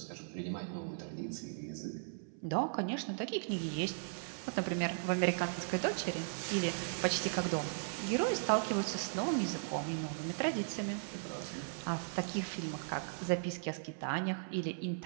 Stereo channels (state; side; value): silent; left; 53 dB below the other